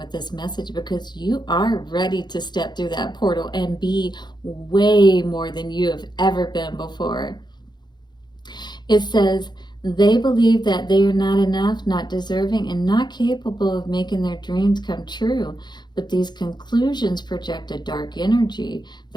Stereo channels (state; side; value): late; right; 0.21 ms